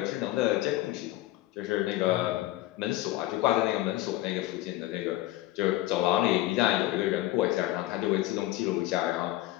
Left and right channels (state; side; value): quieter; right; 16.3 dB